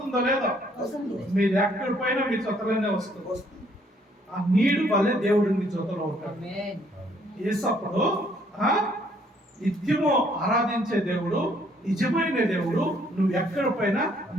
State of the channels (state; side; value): normal; both; correlation 0.65